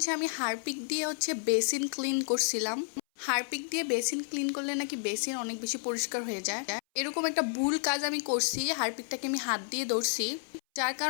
আমি হারপিক দিয়ে বেসিন ক্লিন করছিলাম। হারপিক দিয়ে বেসিন ক্লিন করলে নাকি বেসিন অনেক বেশি পরিষ্কার হয়ে যায়। এরকম একটা ভুল কাজ আমি করছি, হারপিকটাকে আমি হাত দিয়ে ধরছি, যার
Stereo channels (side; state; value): right; silent; 57 dB below the other